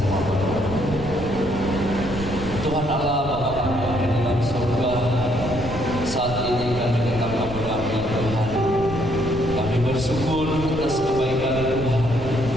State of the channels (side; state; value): right; noise; rumble, 11 dB below the sound